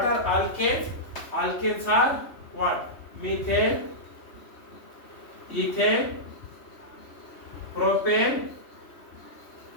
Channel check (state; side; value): late; right; 3.1 ms